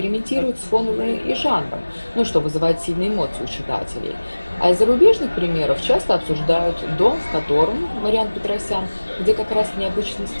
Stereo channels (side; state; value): both; inverted; correlation -1.00